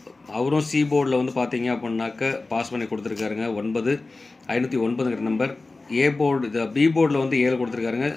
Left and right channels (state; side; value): quieter; right; 3.4 dB